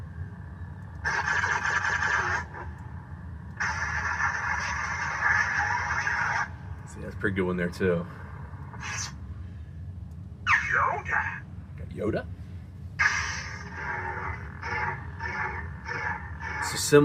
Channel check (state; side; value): identical; both; correlation 1.00